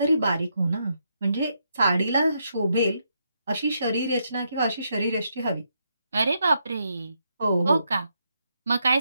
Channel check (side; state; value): both; inverted; correlation -0.79